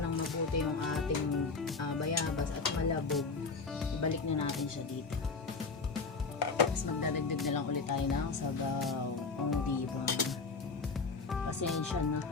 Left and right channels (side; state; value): right; quieter; 4.3 dB